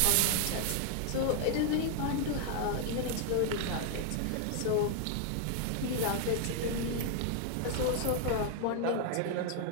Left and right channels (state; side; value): different; both; correlation 0.00